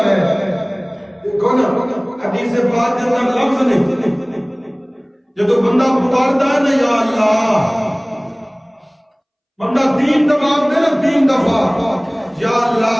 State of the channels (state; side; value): identical; both; correlation 1.00